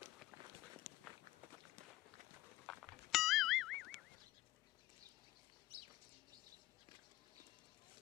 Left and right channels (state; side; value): quieter; right; 16.7 dB